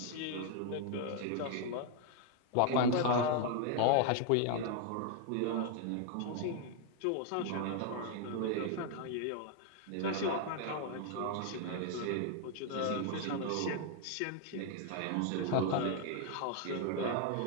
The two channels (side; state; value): both; different; correlation 0.00